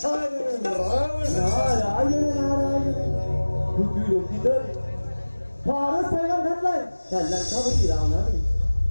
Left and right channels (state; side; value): inverted; both; correlation -1.00